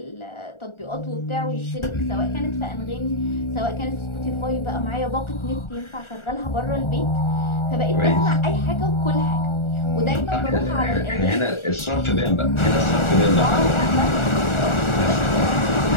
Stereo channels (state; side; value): late; right; 1.4 ms